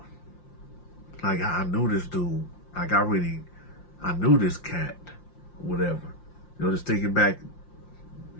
like I knew this dude, like I knew this cat, whatever. Just thinking back,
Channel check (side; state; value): right; late; 5.7 ms